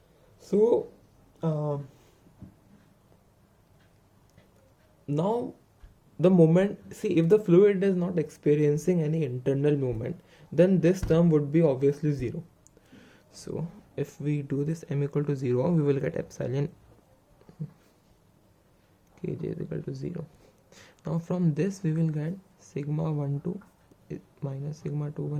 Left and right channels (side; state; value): both; identical; correlation 1.00